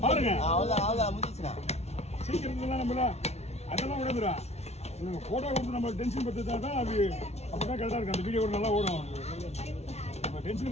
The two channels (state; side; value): late; right; 0.31 ms